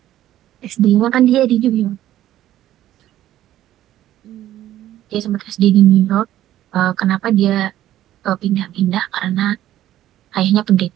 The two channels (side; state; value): left; quieter; 13.0 dB